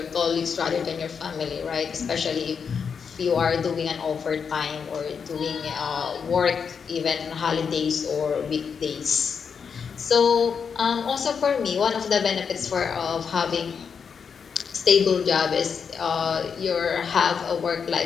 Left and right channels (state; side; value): quieter; right; 6.4 dB